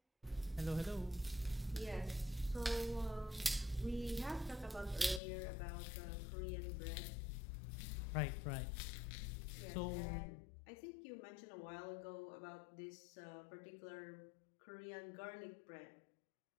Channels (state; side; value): drops out; right; at 5.2 s